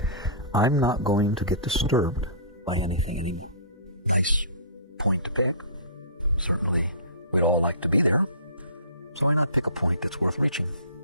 I'm not going to get disturbed by anything anymore. Nice point to pick. Certainly we'd all like to be there. So why not pick a point that's worth reaching?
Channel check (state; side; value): inverted; both; correlation -0.38